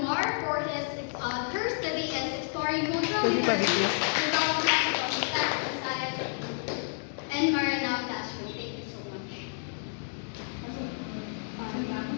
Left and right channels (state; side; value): silent; right; 58 dB below the other